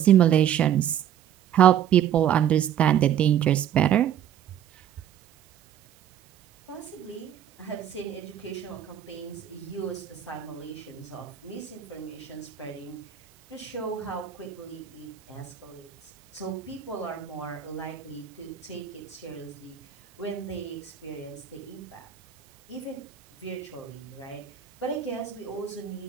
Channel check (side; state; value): left; quieter; 10.1 dB